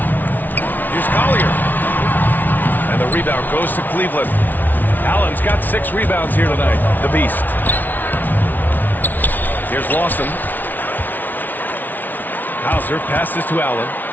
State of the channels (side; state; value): right; late; 0.085 ms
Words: Here's Collier. And the rebound goes to Cleveland. Allen's got 6 rebounds here tonight. The Beast. Here's Lawson. Hauser passes to Allen.